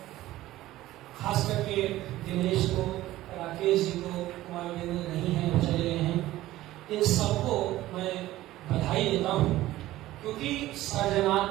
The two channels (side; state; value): left; quieter; 15.7 dB